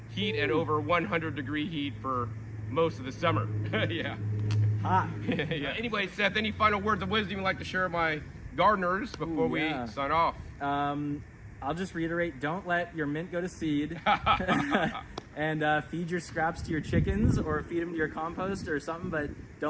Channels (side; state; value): both; identical; correlation 1.00